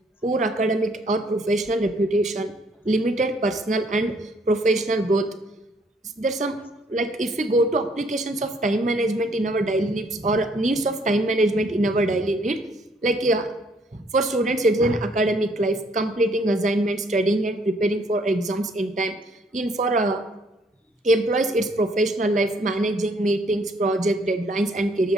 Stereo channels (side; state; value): both; normal; correlation 0.65